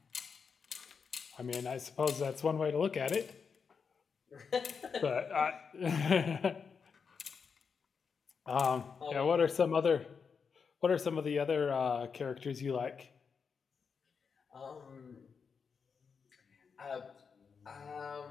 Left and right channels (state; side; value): quieter; right; 5.9 dB